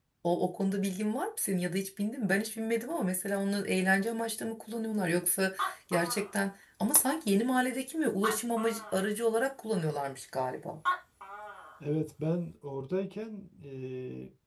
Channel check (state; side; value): identical; both; correlation 1.00